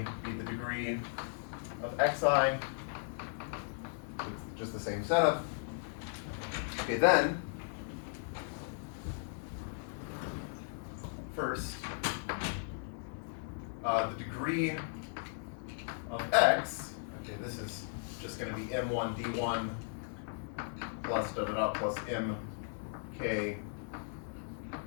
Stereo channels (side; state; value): right; silent; 53 dB below the other